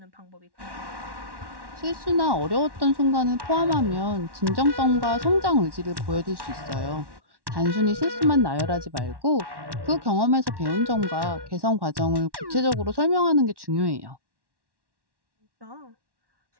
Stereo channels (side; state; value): left; late; 1.1 ms